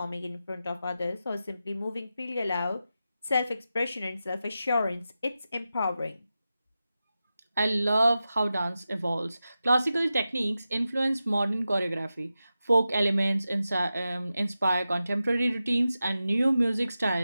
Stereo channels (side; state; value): both; inverted; correlation -0.92